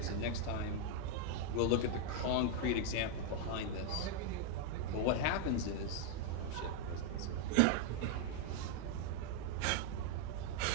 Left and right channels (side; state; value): both; different; correlation 0.00